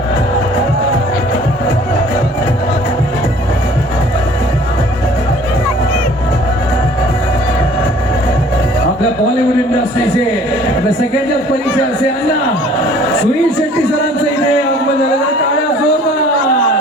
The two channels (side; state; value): both; normal; correlation 0.53